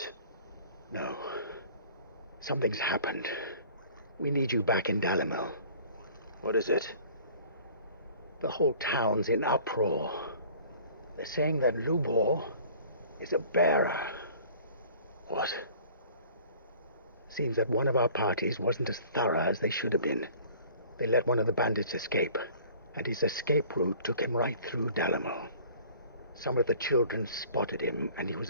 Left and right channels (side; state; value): both; inverted; correlation -0.49